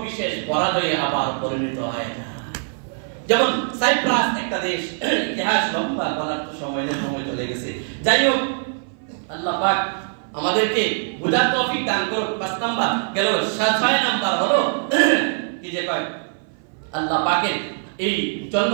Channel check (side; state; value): left; silent; 57 dB below the other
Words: বিশেষ পরাজয়ে আবার পরিণত হয়ে যায়। যেমন সাইপ্রাস একটা দেশ, ইতিহাস লম্বা বলার তো সময় চলে গেছে। যাই হোক, আল্লাহ পাক আমাদেরকে বুঝার তৌফিক দান করুন। 5 নাম্বার গেল। 6 নাম্বার হলো কি যে কয় আল্লাহ পাকের এই জন্য,